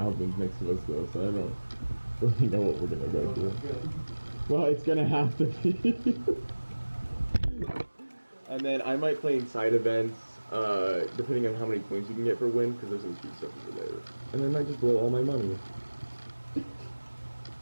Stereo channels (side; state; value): both; inverted; correlation -1.00